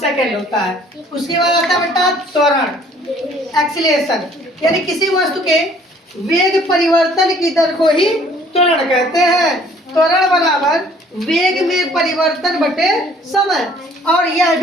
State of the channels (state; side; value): normal; both; correlation 0.57